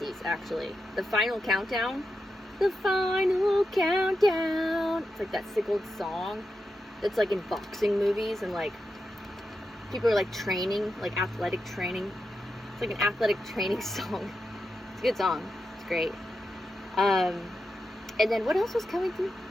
actually. The Final Countdown. The Final Countdown. It's like that sick old song that's like in boxing movies and like people are like training, like athletic training. It's like an athletic training song. It's a good song. It's great. And then what else was coming through?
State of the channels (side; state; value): both; normal; correlation 0.88